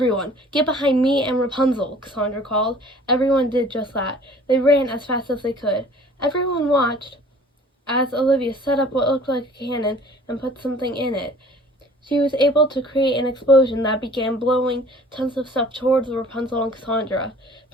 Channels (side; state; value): both; normal; correlation 0.50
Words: get behind me and Rapunzel, Cassandra called. Everyone did just that. They ran as fast as they could. Everyone watched as Olivia set up what looked like a cannon and put something in it. She was able to create an explosion that began blowing tons of stuff towards Rapunzel and Cassandra.